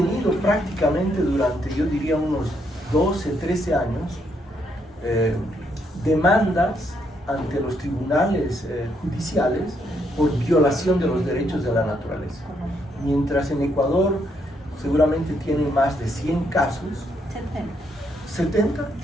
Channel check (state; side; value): normal; both; correlation 0.75